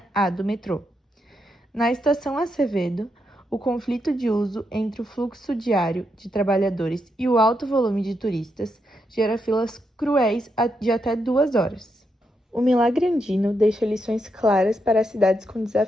A do metrô. Na estação Acevedo, o conflito de uso entre o fluxo diário de trabalhadores e o alto volume de turistas gera filas cruéis de até 2 horas. O milagre andino deixa lições claras para as cidades com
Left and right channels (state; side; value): normal; both; correlation 0.82